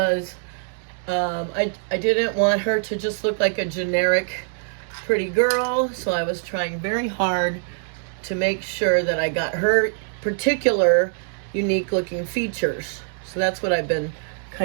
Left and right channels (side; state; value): left; silent; digital silence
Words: I didn't want her to just look like a generic pretty girl, so I was trying very hard to make sure that I got her particular unique looking features. So that's what I've been